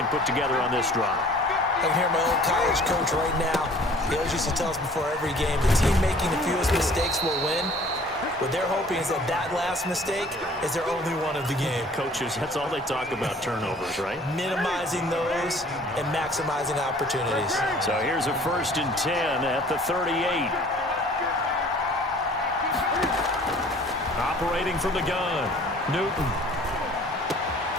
put together on this drive. I can hear my old college coach right now. He always used to tell us before every game, the team making the fewest mistakes will win. What they're hoping is that that last mistake is their only one of the game. Coaches, that's all they talk about, turnovers, right? Minimizing those and maximizing opportunities. So here's a 1st and 10 at the 38. Operating from the gun, Newton.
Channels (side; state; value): both; normal; correlation 0.52